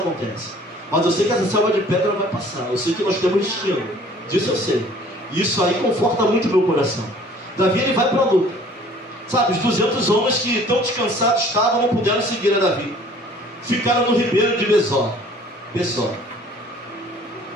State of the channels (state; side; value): normal; both; correlation 0.52